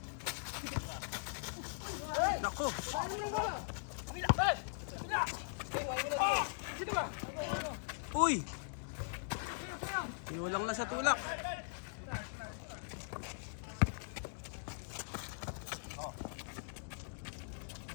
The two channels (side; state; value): right; silent; digital silence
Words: Nako. Uy. Pinulang na sa tulak.